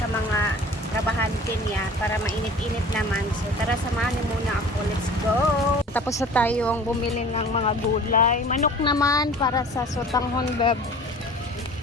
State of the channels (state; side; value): normal; both; correlation 0.44